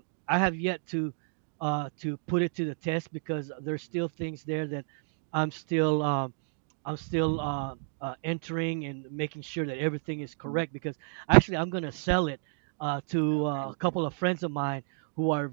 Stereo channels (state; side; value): silent; left; digital silence